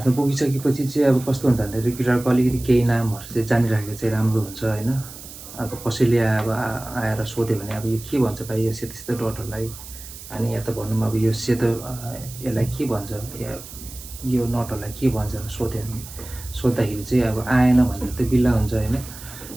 पुगिसकेपछि चाहिँ अब कस्तो हुन्छ भन्दाखेरि गिटारको अलिकति केही नामहरू चाहिँ जानिराखेको चाहिँ राम्रो हुन्छ होइन। अब कसैले अब आएर सोध्यो भने अब यो के भन्छ भाइ यो सेतो सेतो डटहरूलाई, अनि या त भनौँ अब यो सेतो यसलाई के भन्छ, या यो नटहरूलाई के भन्छ सोद्धाखेरि चाहिँ अब आएन भनेर त बिल्ला हुन्छ होइन।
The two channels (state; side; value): noise; right; hiss, 15 dB below the sound